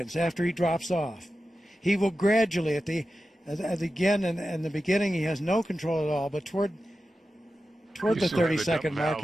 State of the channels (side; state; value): both; normal; correlation 0.92